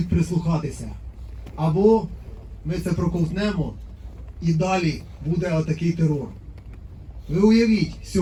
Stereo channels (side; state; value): both; identical; correlation 1.00